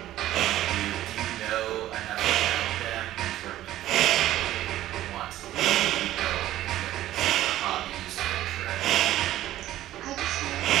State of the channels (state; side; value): quieter; left; 13.9 dB